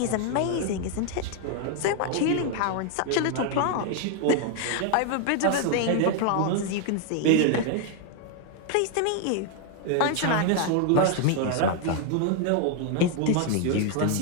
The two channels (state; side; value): different; both; correlation 0.00